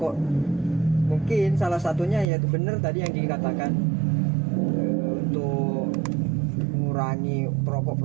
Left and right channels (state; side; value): drops out; left; at 2.2 s